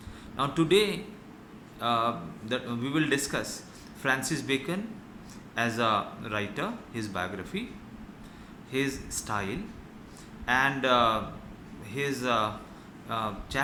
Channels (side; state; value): both; identical; correlation 1.00